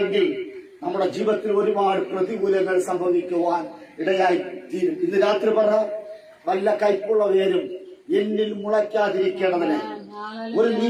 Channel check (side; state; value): both; identical; correlation 1.00